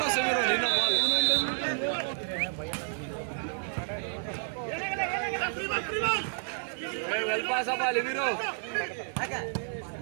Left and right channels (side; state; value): left; silent; 58 dB below the other